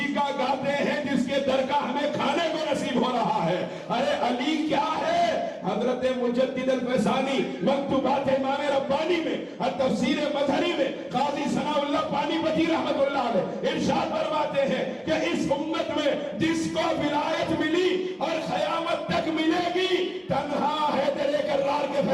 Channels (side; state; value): both; identical; correlation 1.00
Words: کا گاتے ہیں جس کے در کا ہمیں کھانے کو نصیب ہو رہا ہے۔ ارے علی کیا ہے؟ حضرت مجدد الفیضانی مکتوبات امام ربانی میں اور تفسیر مظہری میں قاضی ثناء اللہ پانی پتی رحمت اللہ علیہ ارشاد فرماتے ہیں کہ اس امت میں جس کو ولایت ملی اور قیامت تک ملے گی تنہا حیدر کرار کے